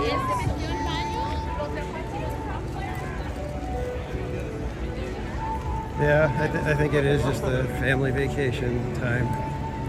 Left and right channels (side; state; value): both; identical; correlation 1.00